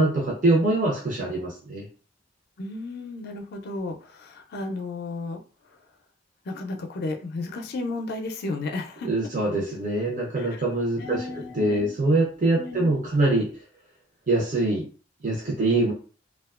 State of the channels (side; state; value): both; normal; correlation 0.51